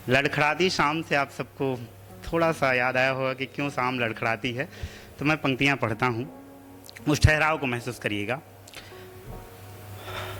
लड़खड़ाती शाम से आप सबको थोड़ा सा याद आया होगा कि क्यों शाम लड़खड़ाती है। तो मैं पंक्तियाँ पढ़ता हूँ, उस ठहराव को महसूस करिएगा।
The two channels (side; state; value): both; identical; correlation 1.00